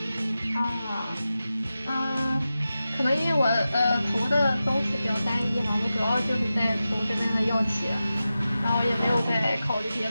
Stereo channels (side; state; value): both; inverted; correlation -0.93